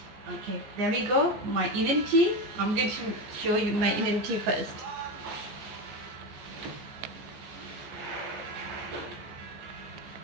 Okay, there we go. My Indian tea. I'm going to show you my Indian tea first.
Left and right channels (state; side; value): late; left; 15 ms